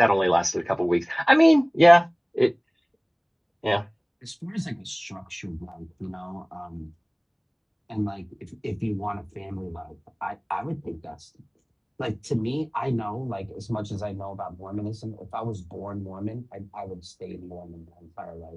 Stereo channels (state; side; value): identical; both; correlation 1.00